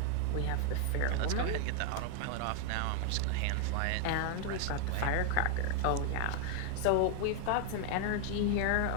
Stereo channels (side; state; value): both; different; correlation 0.00